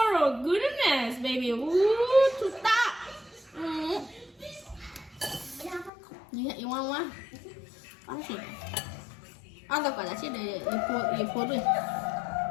Oh, goodness, baby. Ooh, to stop. You want one? Ăn gì? Ăn tao gọi là chết để phô đi.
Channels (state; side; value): drops out; right; at 5.9 s